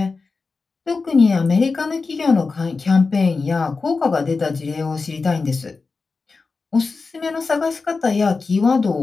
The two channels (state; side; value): quieter; right; 4.3 dB